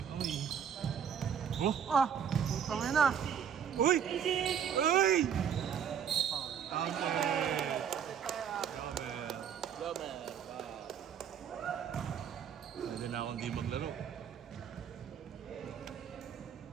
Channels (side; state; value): left; quieter; 8.1 dB